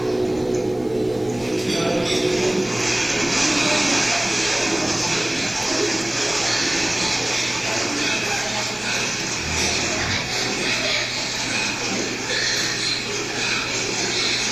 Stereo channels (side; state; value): right; noise; hiss, 29 dB below the sound